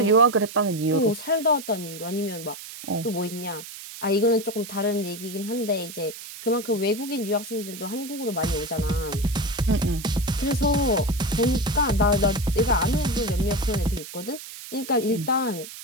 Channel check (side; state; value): right; noise; hiss, 13 dB below the sound